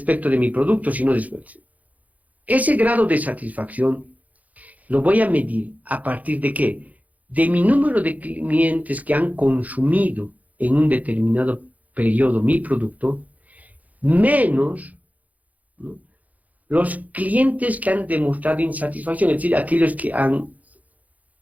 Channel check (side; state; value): left; late; 0.076 ms